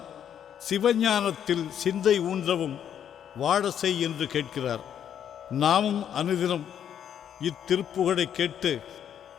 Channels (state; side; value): quieter; right; 9.3 dB